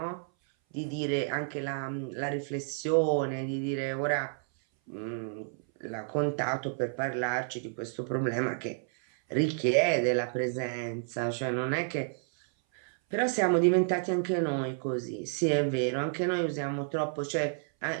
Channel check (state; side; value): silent; left; 57 dB below the other